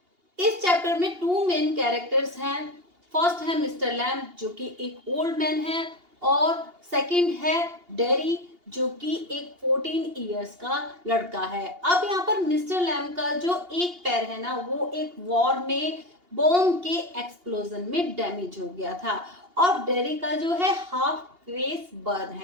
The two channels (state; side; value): late; left; 2.8 ms